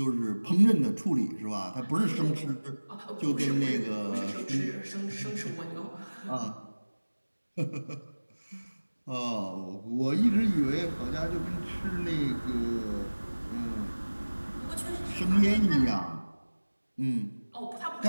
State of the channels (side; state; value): both; inverted; correlation -1.00